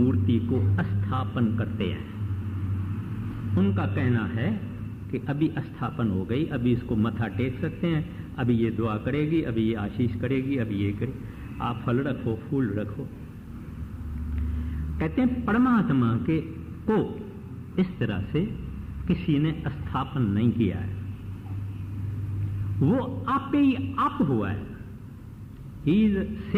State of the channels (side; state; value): both; identical; correlation 1.00